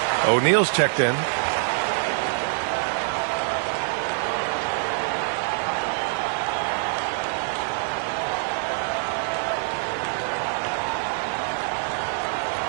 O'Neal's checked in.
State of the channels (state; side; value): silent; left; 62 dB below the other